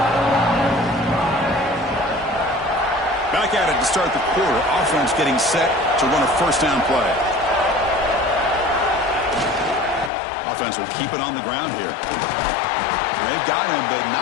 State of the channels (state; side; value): drops out; right; at 10.1 s